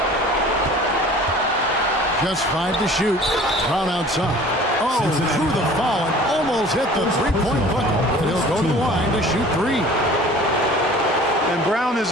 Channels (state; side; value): normal; both; correlation 0.46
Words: Just 5 to shoot. Brown outside. Oh, through the foul and almost hit the three-point bucket. And he'll go to the line to shoot 3. And Brown